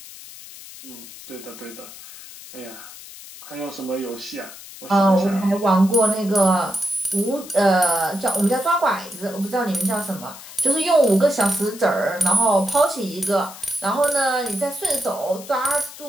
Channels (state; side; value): noise; left; hiss, 16 dB below the sound